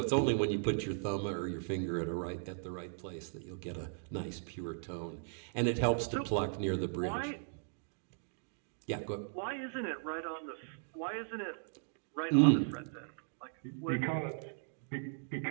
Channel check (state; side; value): silent; left; digital silence